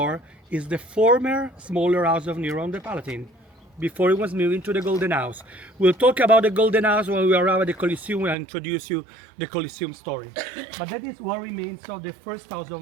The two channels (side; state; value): left; drops out; at 8.3 s